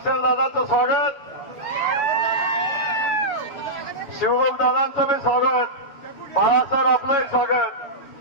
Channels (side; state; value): right; late; 7.1 ms